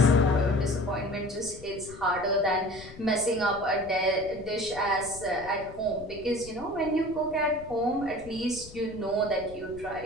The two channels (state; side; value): noise; left; rumble, 18 dB below the sound